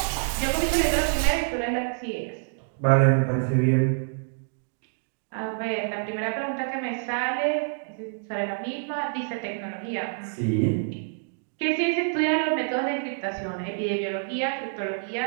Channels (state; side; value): silent; left; digital silence